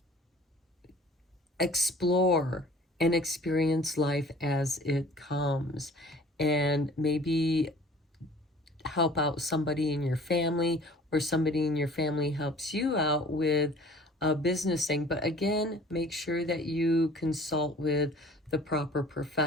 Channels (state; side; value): normal; both; correlation 0.49